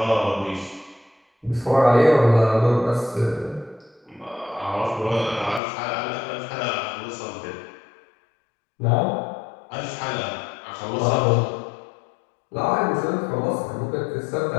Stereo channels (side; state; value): right; drops out; at 5.6 s